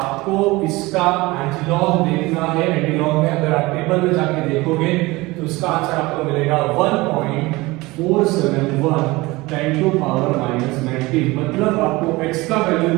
इसका एंटीलॉग देखना है। एंटीलॉग में अगर आप टेबल में जाके देखोगे तो इसका आंसर आपको मिलेगा 1.471 10 टू पावर माइनस 19। मतलब आपको x का वैल्यू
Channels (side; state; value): left; quieter; 21.6 dB